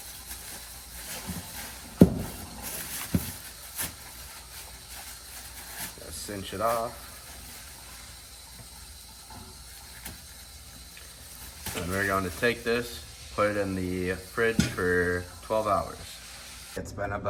Cinch it off. And we're going to take this, put it in the fridge for 12 hours. It's been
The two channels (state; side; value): identical; both; correlation 1.00